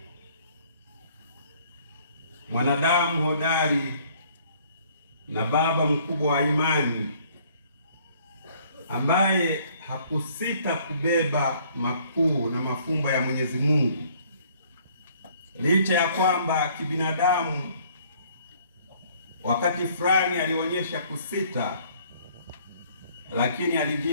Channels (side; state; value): both; inverted; correlation -0.60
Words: mwanadamu hodari na baba mkubwa wa imani, ambaye hakusita kubeba makuu na mafumbo ya Mwenyezi Mungu, licha ya kwamba kibinadamu wakati fulani alionyesha kusita, lakini